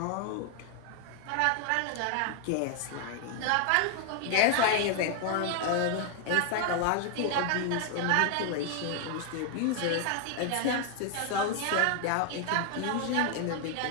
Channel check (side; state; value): both; different; correlation 0.00